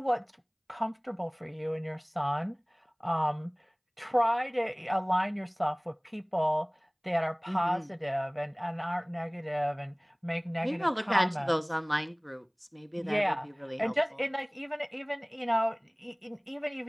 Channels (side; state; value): both; identical; correlation 1.00